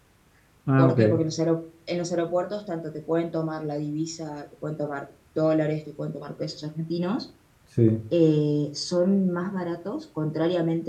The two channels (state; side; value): identical; both; correlation 1.00